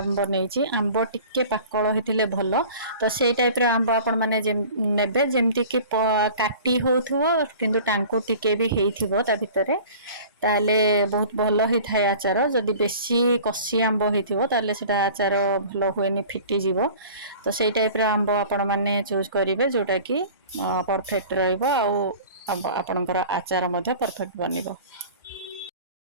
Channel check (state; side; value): inverted; both; correlation -0.43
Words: नैची। आंब टिके पाकळ हिथिले भलो तो सेई टाइप रे आंब आपण माने जे नेबे जेमति कि काटी होथुवो किंतु टांकु टिके भी हेइथिवो ता भितरे ताले बहुत भलो हि थाय आचार। जदि बेसी कसी आंब हेइथिवो ताले सेटा आचार भलो होएनी फिटी जीवो। तो सेई टाइप रे आंब आपण माने चूज करिवे जोटा कि परफेक्ट रहइबो आ आपणकर आचार मध्ये परफेक्ट बनिबो।